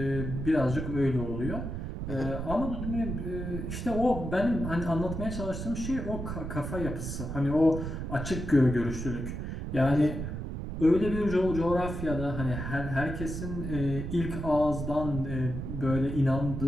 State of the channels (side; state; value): right; noise; rumble, 5 dB below the sound